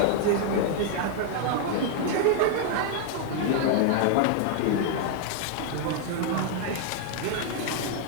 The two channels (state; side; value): different; both; correlation 0.00